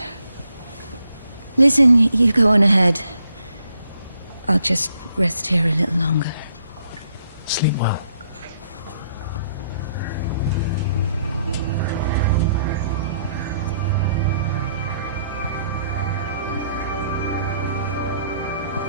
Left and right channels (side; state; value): both; inverted; correlation -0.71